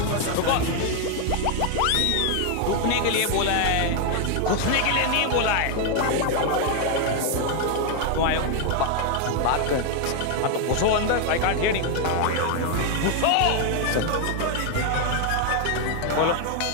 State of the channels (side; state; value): both; different; correlation 0.00